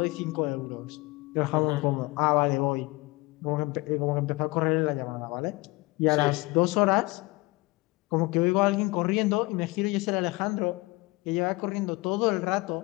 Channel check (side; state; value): right; quieter; 23.0 dB